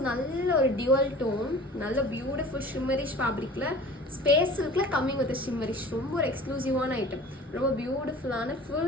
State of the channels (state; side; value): normal; both; correlation 0.42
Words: நல்ல ஒரு டியூவல் டோன், நல்ல பியூட்டிஃபுல் ஷிம்மரிஷ் ஃபேப்ரிக்ல ஸ்பேஸ் சில்க்ல கம்மிங் வித் ஷிம்மரிஷ். ரொம்ப ஒரு எக்ஸ்க்ளூசிவான ஐட்டம். ரொம்ப பியூட்டிஃபுல்லான